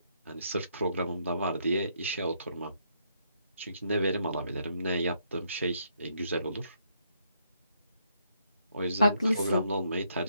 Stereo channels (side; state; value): both; inverted; correlation -0.74